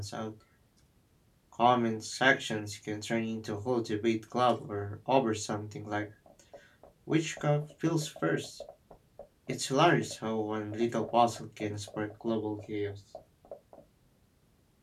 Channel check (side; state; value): both; identical; correlation 1.00